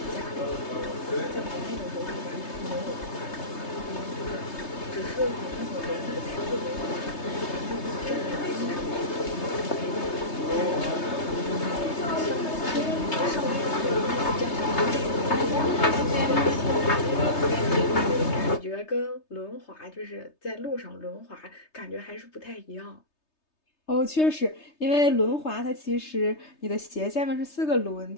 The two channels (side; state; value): right; late; 3.3 ms